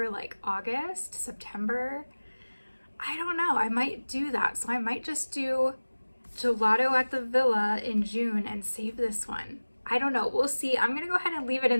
like August, September. I don't know, I might do that. So I might just do Gelato at the Villa in June and save this one. I don't know, we'll see. I'm gonna go ahead and leave it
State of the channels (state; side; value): inverted; both; correlation -1.00